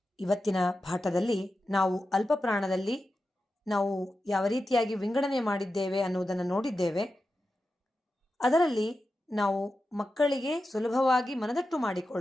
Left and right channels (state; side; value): normal; both; correlation 0.91